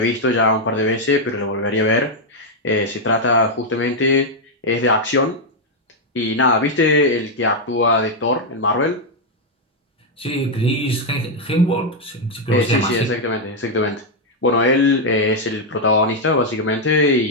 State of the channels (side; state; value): both; normal; correlation 0.00